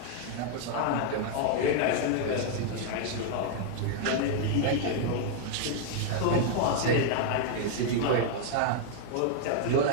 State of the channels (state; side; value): different; both; correlation 0.00